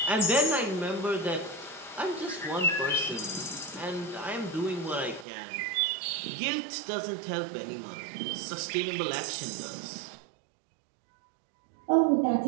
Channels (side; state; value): left; drops out; at 5.2 s